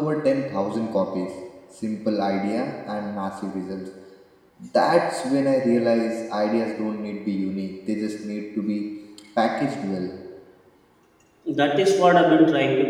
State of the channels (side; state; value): both; identical; correlation 1.00